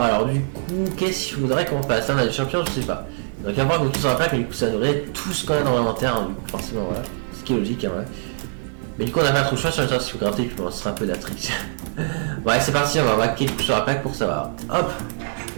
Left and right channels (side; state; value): left; silent; digital silence